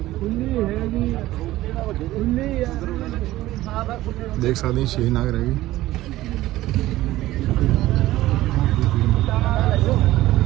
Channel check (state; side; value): quieter; left; 16.1 dB